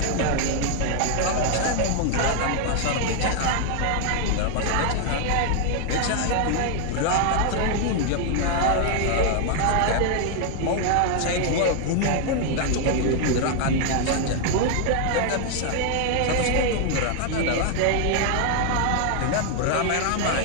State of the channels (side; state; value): both; different; correlation 0.00